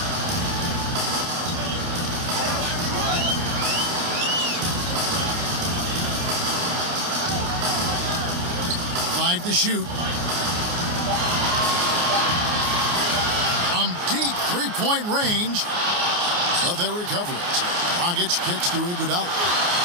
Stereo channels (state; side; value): late; left; 29 ms